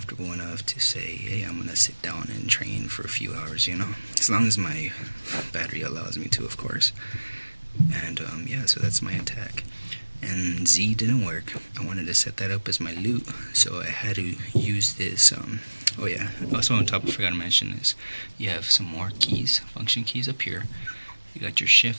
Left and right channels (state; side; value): inverted; both; correlation -1.00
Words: enough to say, hey, I'm gonna sit down and train for a few hours, as long as my battery allows me to, of course. And yeah, so that's my attack. And Z didn't work. I wanted to set that up as my loot, so I had to use this. Oh yeah, also on top, I forgot to mention this. You have some more keys, function keys up here. You got your